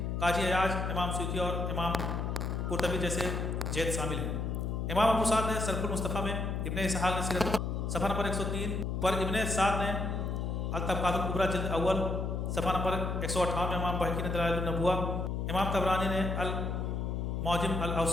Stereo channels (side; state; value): left; noise; hum, 1 dB below the sound